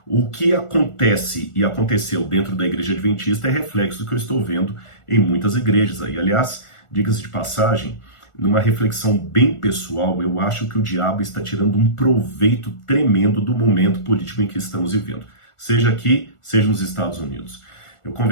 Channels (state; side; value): late; right; 1.4 ms